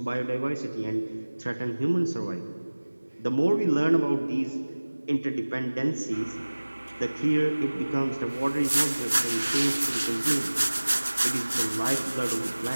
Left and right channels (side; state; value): both; inverted; correlation -1.00